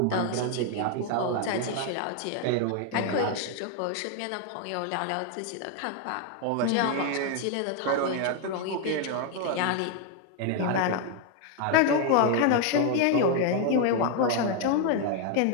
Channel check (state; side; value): different; both; correlation 0.00